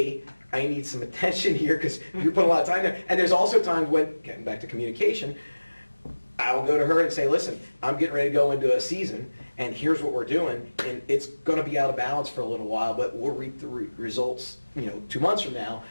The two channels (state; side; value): inverted; both; correlation -1.00